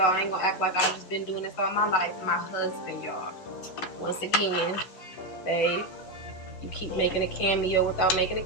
I ain't going to act like I've just been doing this all my life. My husband, y'all, once again, babe, you keep making a cameo without making a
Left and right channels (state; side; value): late; right; 11 ms